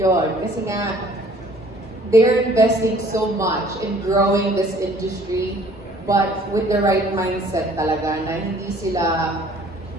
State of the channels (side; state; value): both; normal; correlation 0.55